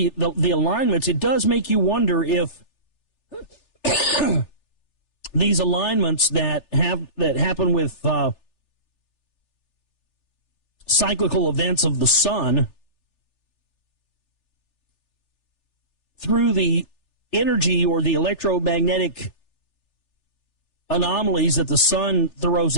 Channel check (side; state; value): right; late; 3.4 ms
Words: the alignments, it does make you wonder if these alignments that happen with cyclical events of the sun through the energy or the electromagnetic anomalies that the sun throws